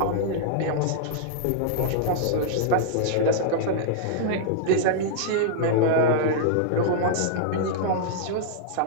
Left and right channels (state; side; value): different; both; correlation -0.02